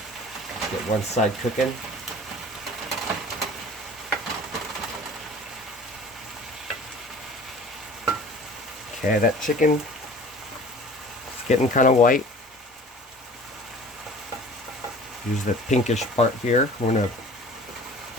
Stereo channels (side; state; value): both; normal; correlation 0.45